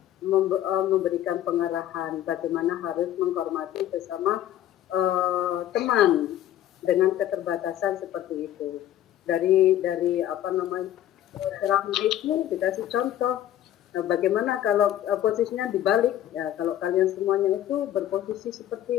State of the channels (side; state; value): right; quieter; 12.3 dB